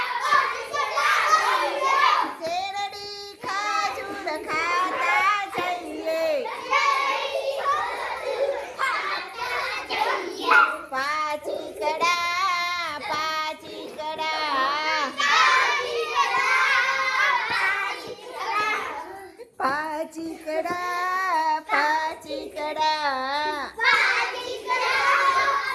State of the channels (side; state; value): both; identical; correlation 1.00